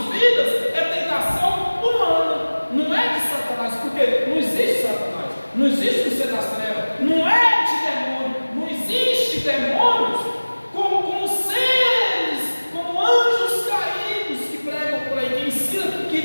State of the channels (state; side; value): inverted; both; correlation -1.00